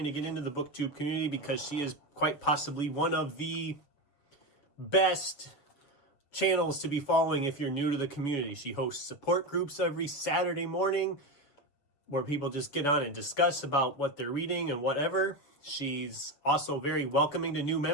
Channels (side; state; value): right; late; 7.1 ms